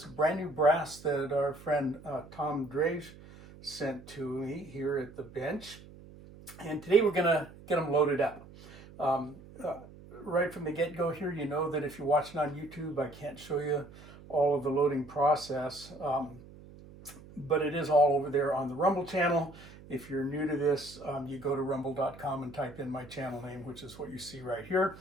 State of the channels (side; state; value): right; noise; hum, 19 dB below the sound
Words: brand new brass that our friend Tom Drage sent to me here at the bench. And today we're going to get them loaded up. Right from the get-go here, you know that if you're watching on YouTube, I can't show you all of the loading process, but it is all over there on the Rumble channel. If you're new to this, you go to rumble.com and type in my channel name, which is what you see right here,